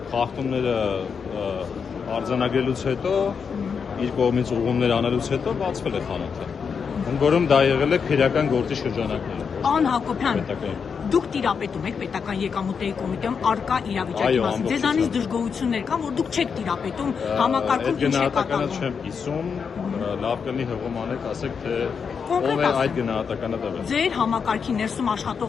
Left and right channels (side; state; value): right; quieter; 6.2 dB